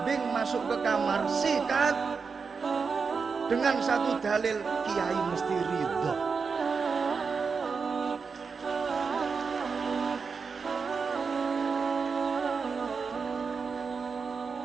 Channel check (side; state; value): left; quieter; 5.2 dB